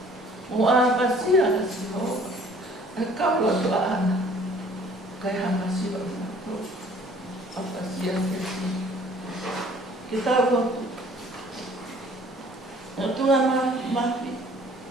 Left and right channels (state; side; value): normal; both; correlation 0.54